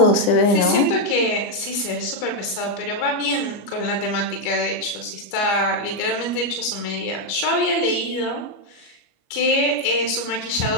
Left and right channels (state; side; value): late; right; 25 ms